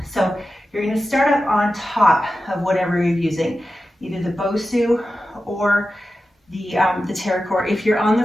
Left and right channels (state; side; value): normal; both; correlation 0.93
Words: So you're going to start up on top of whatever you're using, either the BOSU or the Terra Core. If you're on